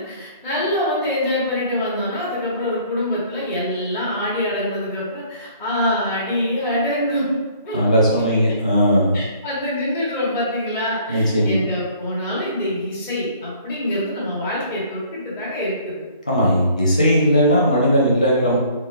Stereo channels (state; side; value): inverted; both; correlation -0.56